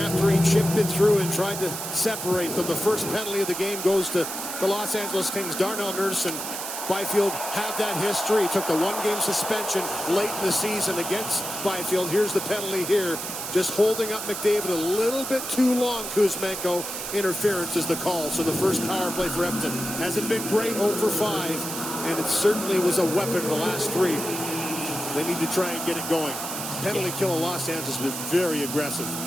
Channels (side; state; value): right; noise; hiss, 6 dB below the sound